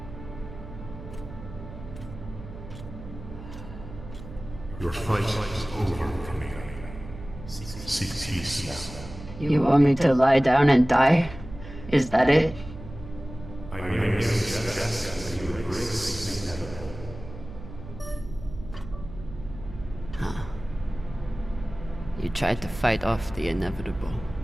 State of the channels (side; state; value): right; noise; hum, 13 dB below the sound